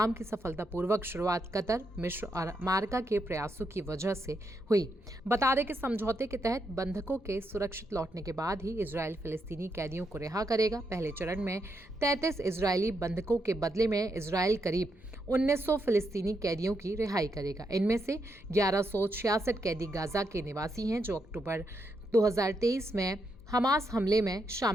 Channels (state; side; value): noise; left; hum, 26 dB below the sound